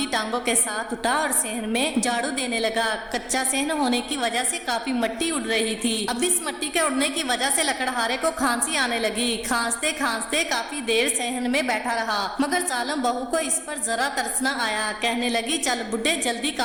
टांगों के साथ उठा और सहन में झाड़ू देने लगा। कच्चा सहन होने की वजह से काफी मिट्टी उड़ रही थी। अब इस मिट्टी के उड़ने की वजह से लकड़हारे को खांसी आने लगी। खांसते खांसते काफी देर सहन में बैठा रहा, मगर जालिम बहू को इस पर जरा तरस न आया। कहने लगी, चल बुड्ढे जल्दी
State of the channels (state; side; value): identical; both; correlation 1.00